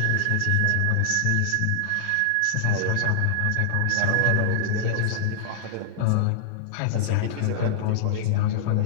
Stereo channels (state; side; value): different; both; correlation -0.01